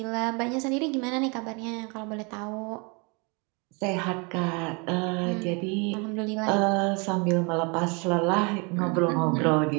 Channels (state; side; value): quieter; left; 31.1 dB